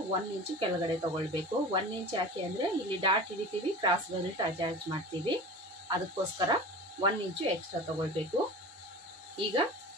1 ಇಂಚು ಕೆಳಗಡೆ ತಗೊಳ್ಬೇಕು. 1 ಇಂಚ್ ಯಾಕೆ ಅಂದರೆ ಇಲ್ಲಿ ಡಾಟ್ ಹಿಡಿತೀವಿ, ಕ್ರಾಸ್ ಬೆಲ್ಟ್ ಅಟ್ಯಾಚ್ ಮಾಡ್ತೀವಿ, ಅದಕ್ಕೋಸ್ಕರ 1 ಇಂಚು ಎಕ್ಸ್ಟ್ರಾ ತಗೊಳ್ಬೇಕು. ಈಗ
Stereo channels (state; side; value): normal; both; correlation 0.35